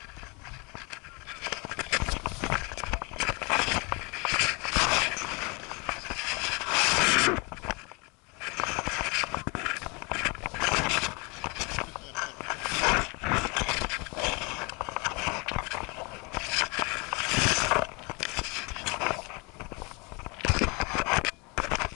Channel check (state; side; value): quieter; right; 29.5 dB